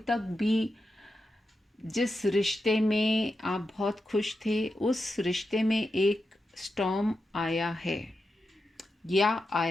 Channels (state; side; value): normal; both; correlation 0.89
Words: तक भी जिस रिश्ते में आप बहुत खुश थे, उस रिश्ते में एक स्टॉर्म आया है या